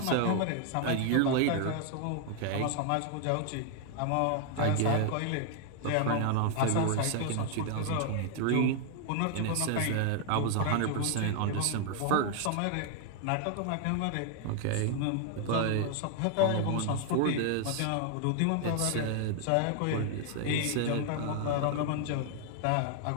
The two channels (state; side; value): different; both; correlation 0.00